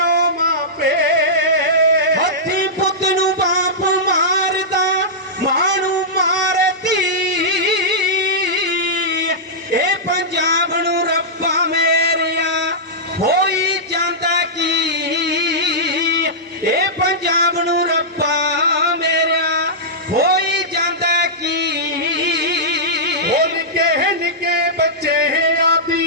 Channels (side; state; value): both; normal; correlation -0.13